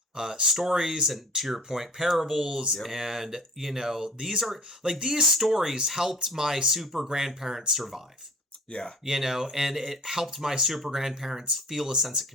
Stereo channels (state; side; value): normal; both; correlation 0.43